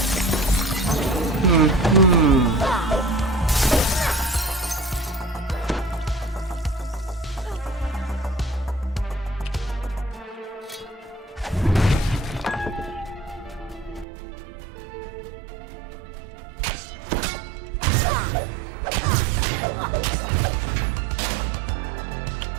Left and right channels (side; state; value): left; drops out; at 14.1 s